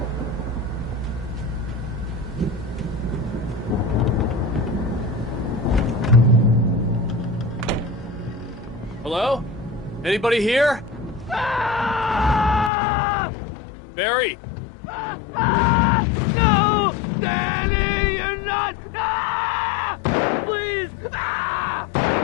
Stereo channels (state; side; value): drops out; right; at 12.7 s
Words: Hello? Anybody here? Barry! No! Danny, you're not! Ah! Please! Ah!